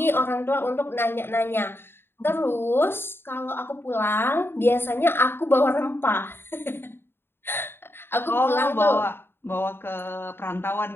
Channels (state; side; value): late; right; 0.11 ms